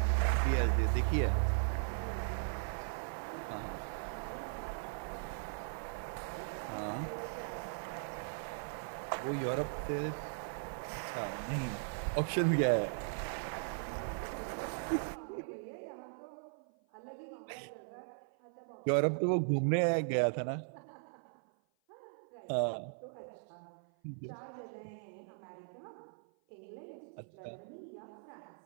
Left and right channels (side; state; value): left; silent; 52 dB below the other